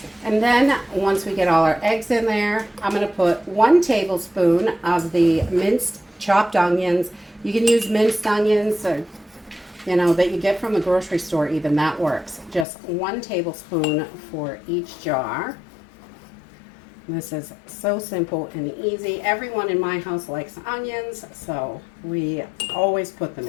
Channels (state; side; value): drops out; right; at 12.7 s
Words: And then once we get all our eggs in there, I'm going to put 1 tablespoon of the minced chopped onions. You can use minced onions, or, that you get from the grocery store even. That works. Just 1 tablespoon for each jar. This is so simple and easy. Everyone in my house likes onions, so we always put them